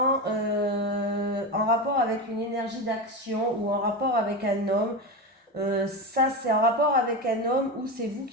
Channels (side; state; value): both; normal; correlation 0.19